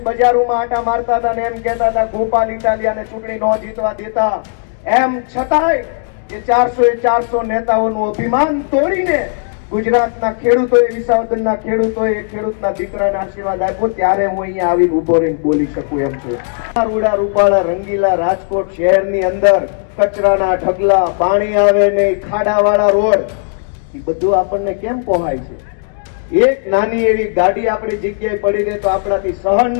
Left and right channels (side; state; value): right; silent; digital silence